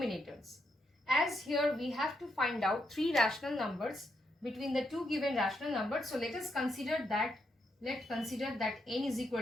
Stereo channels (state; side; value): normal; both; correlation 0.80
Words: As here we have to find out three rational numbers between the two given rational numbers. So let us consider that, n is